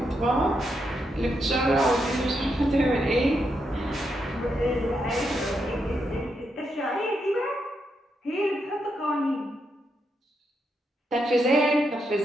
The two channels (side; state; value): both; normal; correlation 0.81